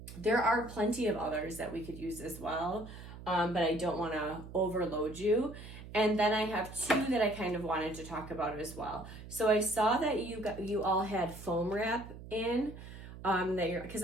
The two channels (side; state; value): right; noise; hum, 14 dB below the sound